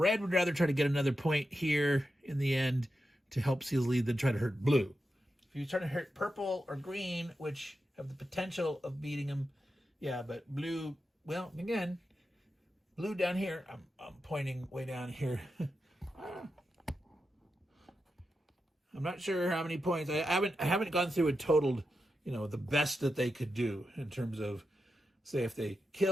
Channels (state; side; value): normal; both; correlation 0.89